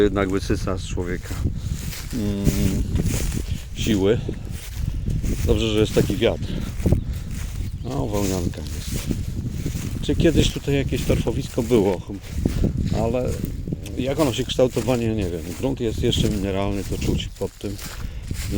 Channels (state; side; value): identical; both; correlation 1.00